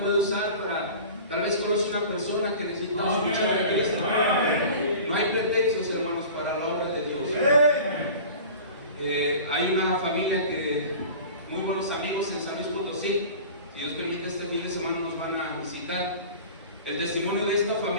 puede usar para, tal vez conoce una persona que necesita escuchar a Cristo. No hay pretextos, hermanos, para la obra de Dios. Hay una familia que, muy buenos amigos en San Luis Potosí. Si Dios permite, este fin de semana nos van a visitar. El testimonio de esta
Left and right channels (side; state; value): both; inverted; correlation -0.39